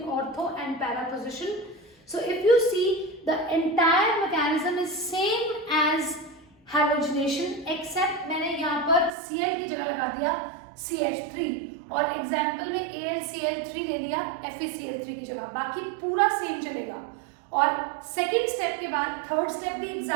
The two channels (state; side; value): drops out; left; at 9.1 s